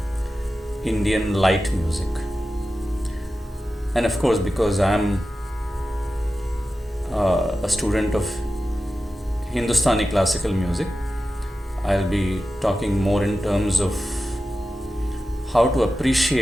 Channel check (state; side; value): normal; both; correlation 0.93